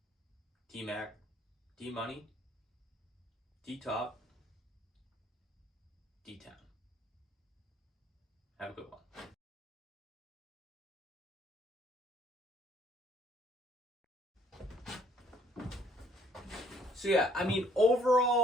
D-Mac, D-Money, D-Top, D-Town. Have a good one. So yeah,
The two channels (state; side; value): normal; both; correlation 0.62